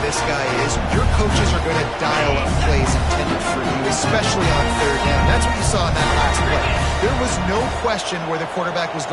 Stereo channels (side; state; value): both; identical; correlation 1.00